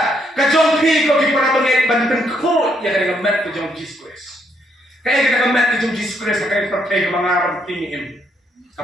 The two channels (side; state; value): both; normal; correlation 0.74